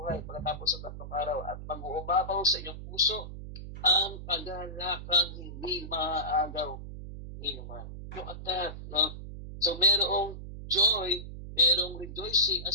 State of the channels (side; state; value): right; noise; hum, 10 dB below the sound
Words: pagkatapos sa 3 araw at mag-uumapaw sa inyong puso ang kagalakang hindi maaagaw ni naman. Look at that, no? So, merong joy, merong rejoicing. Ang